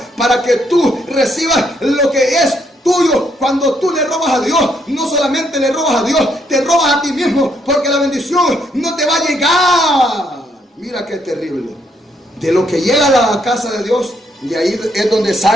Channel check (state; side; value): normal; both; correlation 0.73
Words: para que tú recibas lo que es tuyo. Cuando tú le robas a Dios, no solamente le robas a Dios, te robas a ti mismo, porque la bendición no te va a llegar. Mira qué terrible. De lo que llega a la casa de Dios, de ahí es donde